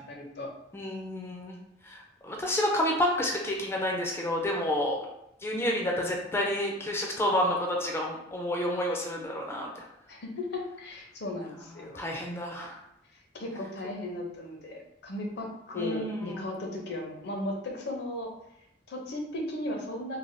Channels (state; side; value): normal; both; correlation 0.37